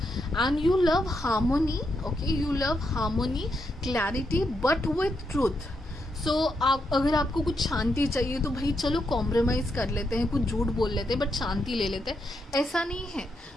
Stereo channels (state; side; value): normal; both; correlation 0.82